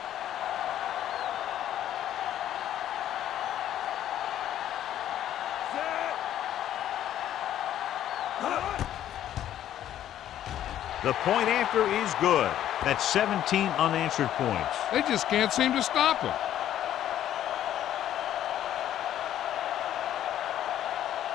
The point after is good. That's 17 unanswered points. They just can't seem to stop him.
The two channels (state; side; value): quieter; right; 11.5 dB